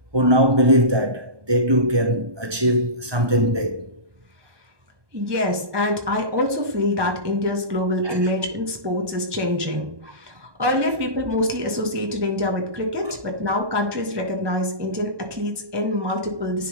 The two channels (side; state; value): left; late; 1.2 ms